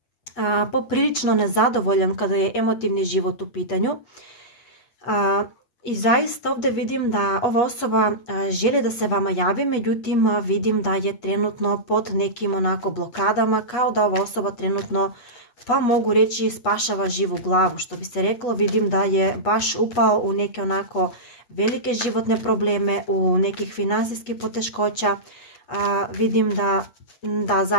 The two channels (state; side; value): late; right; 8.2 ms